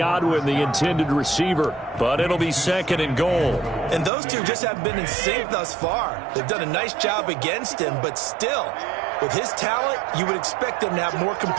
the intended receiver, but it'll be 2nd and goal. And those two just haven't been in sync thus far. They've done a nice job against him, but still, with his talent, you would expect them to have more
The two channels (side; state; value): left; drops out; at 4.1 s